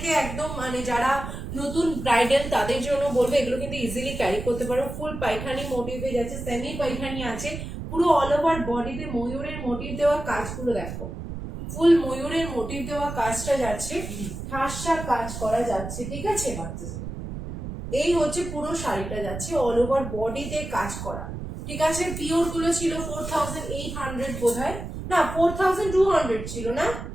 একদম, মানে যারা নতুন ব্রাইডাল তাদের জন্য বলবো, এগুলো কিন্তু ইজিলি ক্যারি করতে পারো। ফুল পাইখানি মোটিভে যাচ্ছে, সেমি পাইখানি আছে, পুরো অল ওভার বডিতে ময়ূরের মোটিভ দেওয়া কাজগুলো দেখো, ফুল ময়ূরের মোটিভ দেওয়া কাজটা যাচ্ছে, ঠাসা কাজ করা যাচ্ছে, ঠিক আছে। এই হচ্ছে পুরো শাড়িটা যাচ্ছে অল ওভার বডিতে কাজ করা, ঠিক আছে। পিওর গুলো ছিল 4800 বোধহয়, না 4200 ছিল, না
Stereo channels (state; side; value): noise; right; rumble, 8 dB below the sound